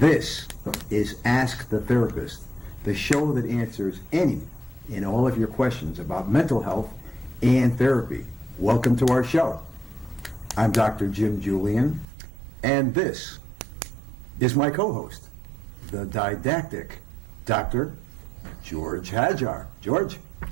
is Ask the Therapist, the show that answers any and all of your questions about mental health and therapy. Welcome to our show. I'm Dr. Jim Julian, and this is my co-host, the didactic Dr. George Hajar. George?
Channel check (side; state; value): left; drops out; at 12.1 s